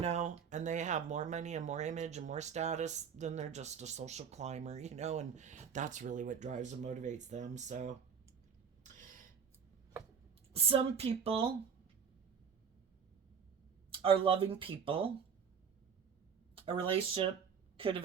and they have more money and more image and more status, then they're just a social climber, you know, and that's really what drives and motivates them. So some people are loving people. A relationship could have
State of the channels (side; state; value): left; quieter; 6.8 dB